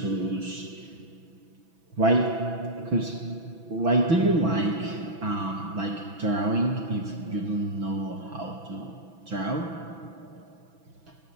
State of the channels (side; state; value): left; late; 6.0 ms